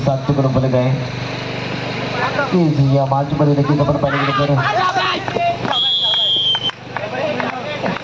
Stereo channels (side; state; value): both; identical; correlation 1.00